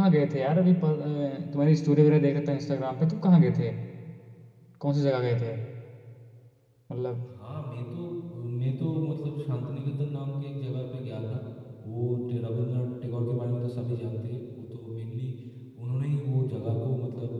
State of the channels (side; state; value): both; identical; correlation 1.00